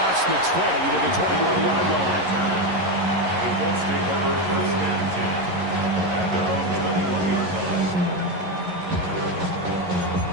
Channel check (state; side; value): late; left; 11 ms